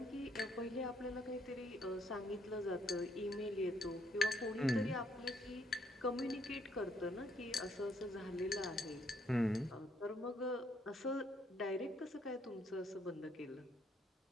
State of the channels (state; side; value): normal; both; correlation 0.70